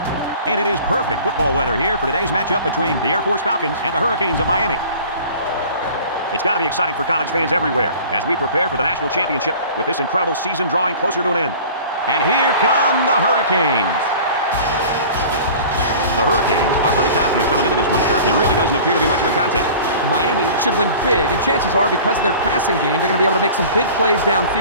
And it is perfect football weather here for today's matchup between the Air Force Falcons and the Hurricanes of Miami. It's got to be exciting for college fans everywhere as we prepare for the national championship with this incredible season drawing closer to an end. And here come the Hurricanes. The Hurricanes are pretty confident coming into this one, Kirk. It really doesn't appear to be much of a contest. Miami should win big, and chances are because of their passing game, they're going to be able to make some big plays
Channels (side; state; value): both; inverted; correlation -0.42